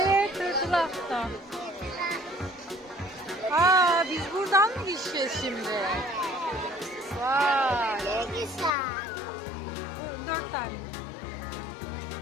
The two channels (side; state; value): right; drops out; at 8.7 s